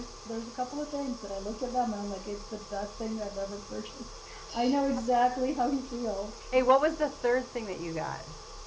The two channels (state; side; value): identical; both; correlation 1.00